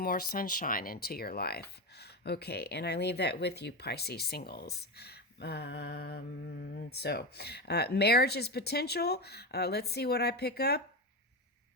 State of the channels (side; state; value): both; normal; correlation 0.16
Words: more sunshine into your life. Okay, and I leave that with you, Pisces singles. Marriage is potential. Let's see what I pick up.